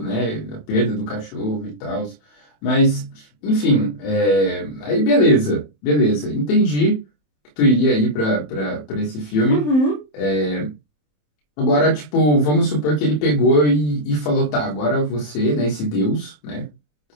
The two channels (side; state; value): right; late; 27 ms